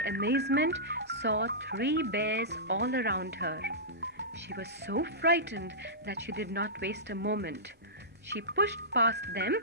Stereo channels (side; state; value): both; normal; correlation -0.17